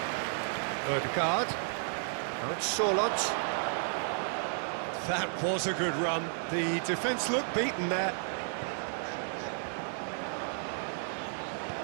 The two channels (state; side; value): silent; left; 56 dB below the other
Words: Odegaard. Now it's Solot. That was a good run. The defence looked beaten there.